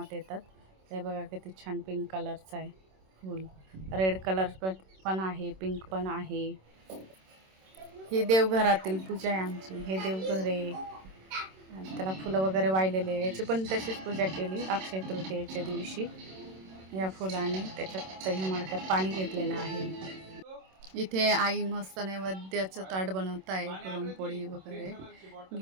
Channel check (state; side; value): late; left; 26 ms